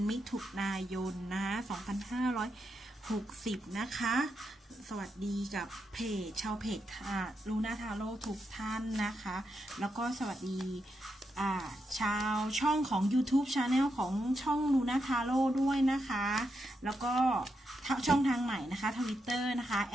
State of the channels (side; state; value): both; normal; correlation 0.84